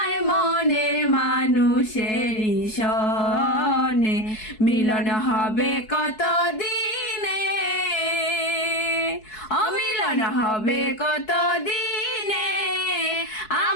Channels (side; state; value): right; late; 4.7 ms